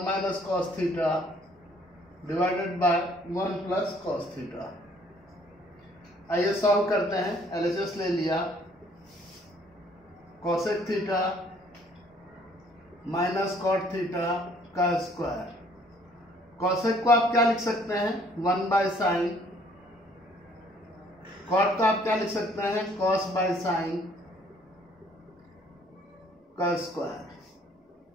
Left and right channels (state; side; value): normal; both; correlation 0.61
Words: minus cos theta divided by 1 plus cos theta. आइए सॉल्व करते हैं। एलएचएस ले लिया। Cosec theta minus cot theta का स्क्वायर। कोसेक को आप क्या लिख सकते हैं? 1 बाय साइन। कॉट को आप क्या लिख सकते हैं? कॉस बाय साइन का स्क्वायर।